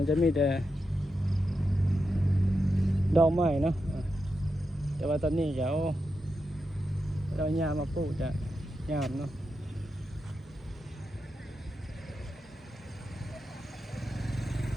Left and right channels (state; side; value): normal; both; correlation 0.88